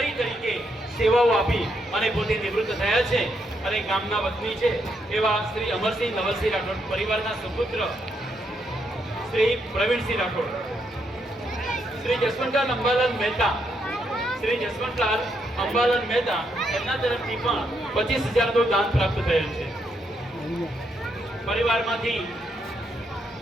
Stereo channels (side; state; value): both; normal; correlation 0.78